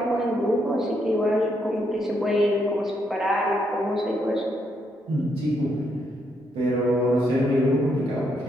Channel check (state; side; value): normal; both; correlation 0.77